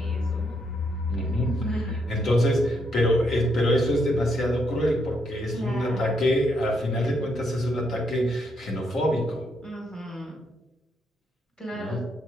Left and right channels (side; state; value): both; normal; correlation 0.76